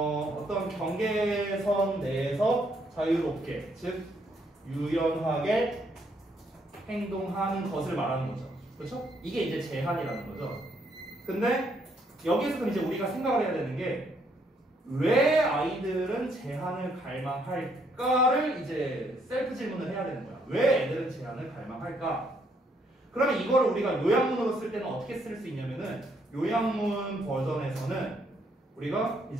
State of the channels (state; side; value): normal; both; correlation 0.71